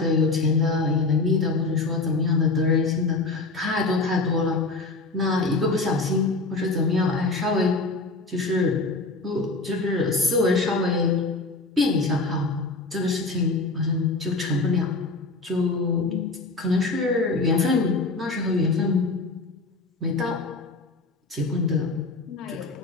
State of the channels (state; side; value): quieter; right; 3.5 dB